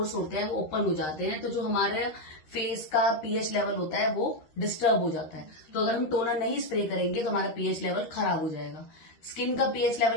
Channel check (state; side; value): late; right; 13 ms